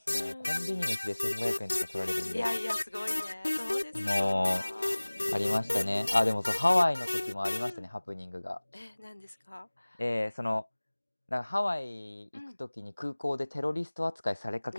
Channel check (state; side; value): inverted; both; correlation -1.00